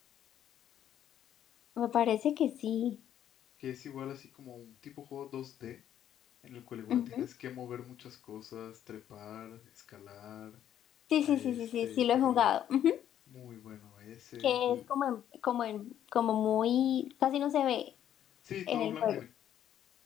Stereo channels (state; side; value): quieter; right; 10.6 dB